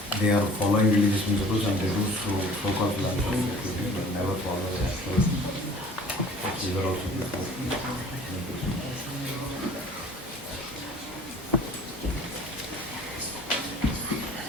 they are following religious principles and they do so-called philanthropic activities, but never follow the actual. These are also before.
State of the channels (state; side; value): normal; both; correlation 0.48